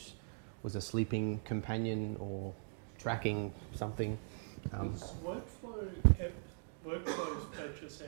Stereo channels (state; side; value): silent; left; digital silence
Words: was a sleeping companion or tracking something. Was Workflow's purchase